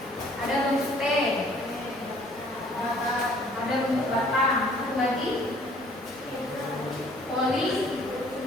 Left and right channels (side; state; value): both; normal; correlation 0.57